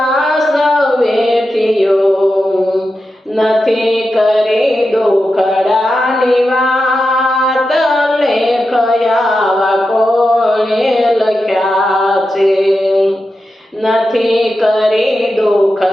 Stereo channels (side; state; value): both; normal; correlation 0.90